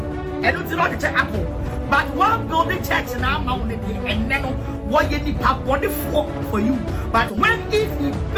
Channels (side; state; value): both; identical; correlation 1.00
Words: And it's not the church apple. But one build a church now, and then what you need for you. But when if he